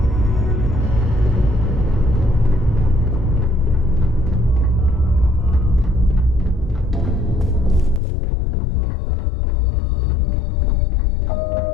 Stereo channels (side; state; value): right; drops out; at 8.0 s